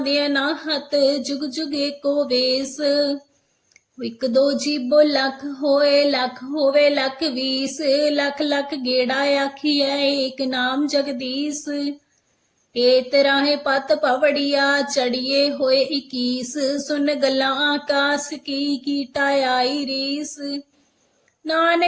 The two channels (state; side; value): identical; both; correlation 1.00